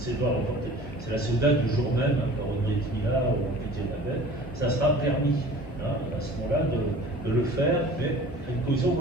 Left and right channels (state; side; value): noise; left; hum, 20 dB below the sound